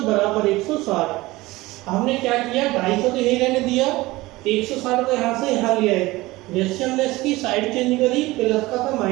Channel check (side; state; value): left; quieter; 19.8 dB